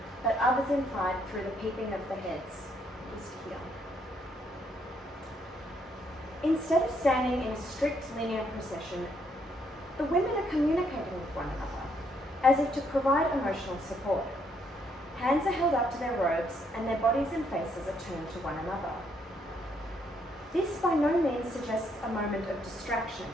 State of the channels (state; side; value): normal; both; correlation 0.71